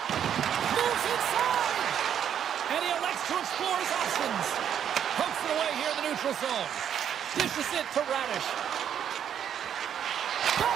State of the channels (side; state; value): left; quieter; 9.1 dB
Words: Moves inside. And he elects to explore his options. Pokes it away here in the neutral zone. Dishes it to Radish.